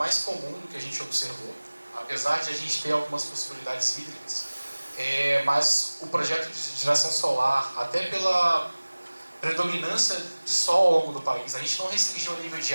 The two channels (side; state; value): both; inverted; correlation -1.00